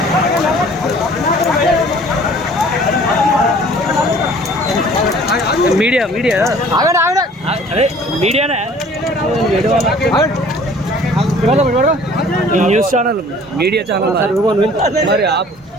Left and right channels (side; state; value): both; normal; correlation 0.51